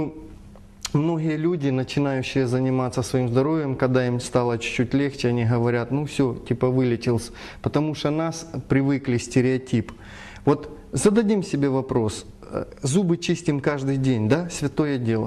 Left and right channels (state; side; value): identical; both; correlation 1.00